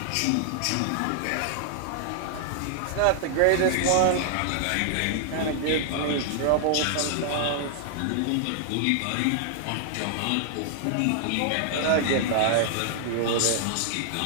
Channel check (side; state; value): both; different; correlation 0.00